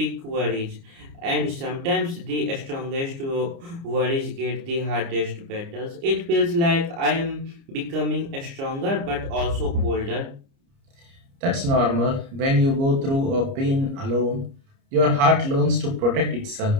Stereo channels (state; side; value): late; left; 29 ms